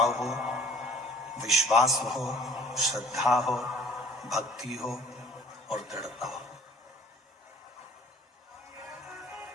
हो, विश्वास हो, श्रद्धा हो, भक्ति हो और दृढ़ता हो।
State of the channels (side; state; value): both; normal; correlation 0.51